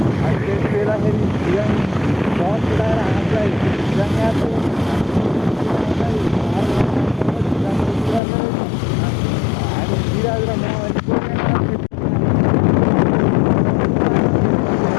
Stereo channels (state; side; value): drops out; right; at 8.2 s